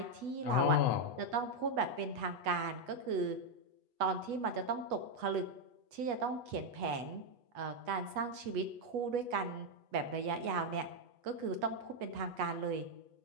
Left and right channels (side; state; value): left; late; 8.2 ms